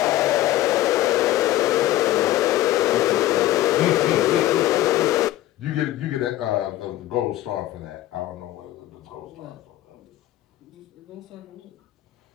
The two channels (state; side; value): quieter; right; 14.4 dB